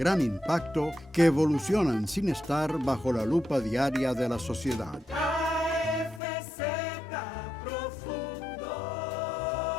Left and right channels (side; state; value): right; drops out; at 6.2 s